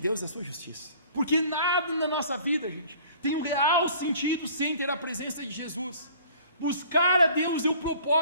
é a sua justiça. Porque nada na nossa vida, gente, tem um real sentido sem ter a presença de Jesus. Buscar a Deus é o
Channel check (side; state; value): both; inverted; correlation -0.51